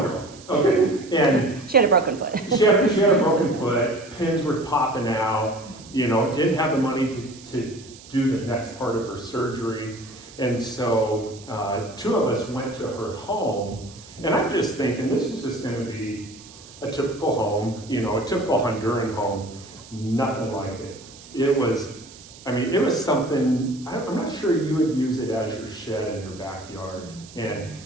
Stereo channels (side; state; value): right; noise; hiss, 20 dB below the sound